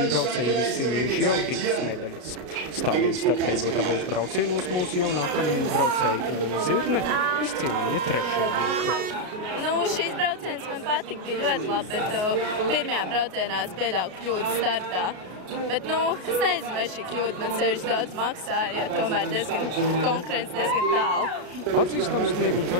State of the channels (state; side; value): late; left; 33 ms